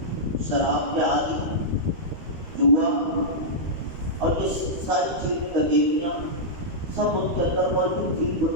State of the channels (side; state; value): left; late; 13 ms